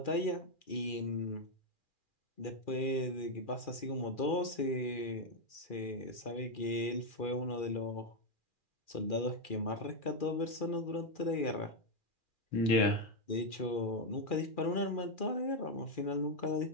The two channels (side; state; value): right; late; 2.4 ms